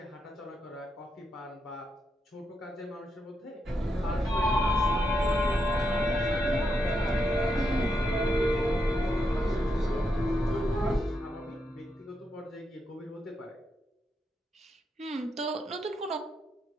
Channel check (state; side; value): normal; both; correlation 0.82